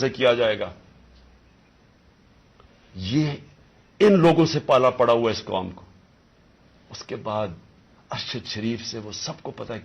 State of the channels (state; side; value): identical; both; correlation 1.00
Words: کیا جائے گا۔ یہ ان لوگوں سے پالا پڑا ہوا اس قوم کو۔ اس کے بعد ارشد شریف سے وہ سب کو پتا ہے